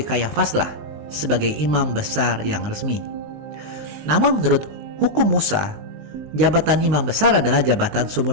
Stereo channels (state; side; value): late; left; 19 ms